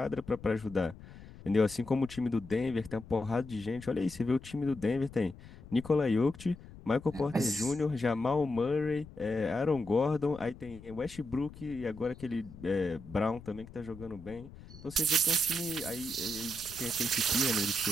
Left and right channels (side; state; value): left; noise; rumble, 17 dB below the sound